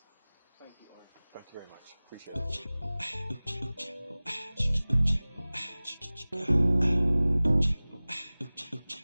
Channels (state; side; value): inverted; both; correlation -0.99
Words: Thank you, Orin. Thank you very much. Appreciate